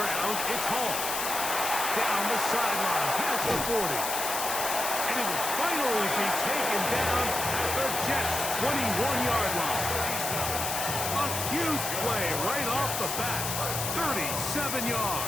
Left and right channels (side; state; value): left; noise; hiss, 2 dB below the sound